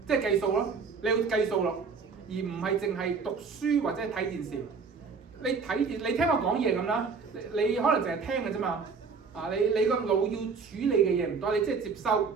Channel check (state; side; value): quieter; left; 5.2 dB